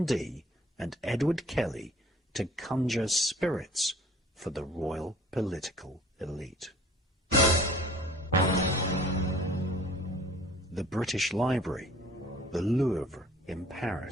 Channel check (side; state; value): both; normal; correlation 0.52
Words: Dee and Edward Kelly to conjure spirits for the royal political elite. The British Library, the Louvre in